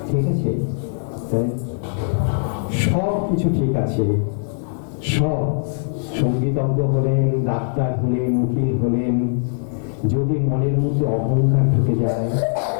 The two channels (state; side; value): silent; right; digital silence